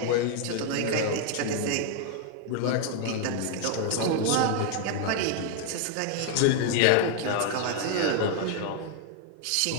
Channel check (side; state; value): both; different; correlation 0.00